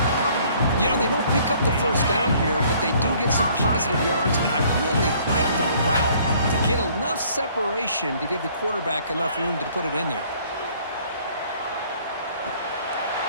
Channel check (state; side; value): inverted; both; correlation -0.59